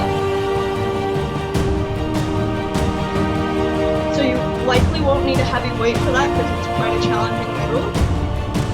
So you likely won't need a heavy weight for that because it's quite a challenging move.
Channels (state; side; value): identical; both; correlation 1.00